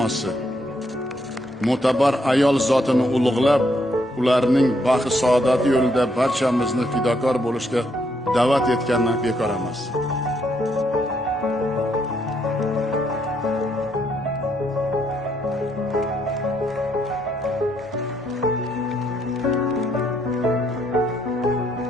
mo'tabar ayol zotini ulug'lab, ularning baxt saodati yo'lida barchamizni fidokor bo'lishga da'vat etganini bekor emas.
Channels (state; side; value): normal; both; correlation 0.74